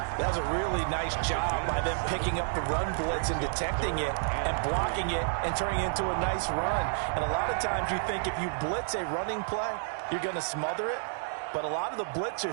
That's a really nice job by them picking up the run blitz and detecting it and blocking it and turning it into a nice run. And a lot of times you think if you blitz a running play, you're going to smother it. But a lot of the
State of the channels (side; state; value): left; silent; digital silence